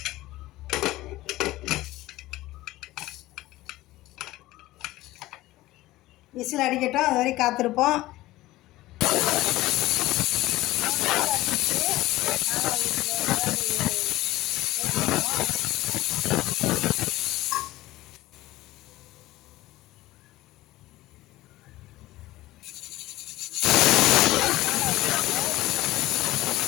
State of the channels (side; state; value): right; quieter; 17.3 dB